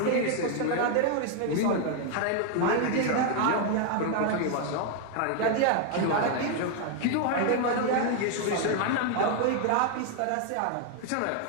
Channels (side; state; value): both; different; correlation 0.00